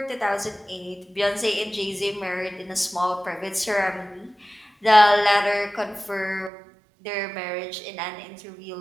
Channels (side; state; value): left; drops out; at 6.5 s